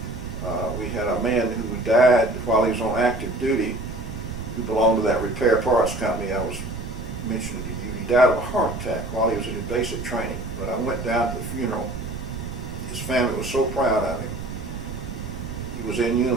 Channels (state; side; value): noise; right; rumble, 8 dB below the sound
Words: We had a man who died while he was on active duty, who belonged to that repair parts company I was mentioning to you. He died of a heart attack while he was in his basic training. But I went down to the funeral. His family was so proud of him. He was in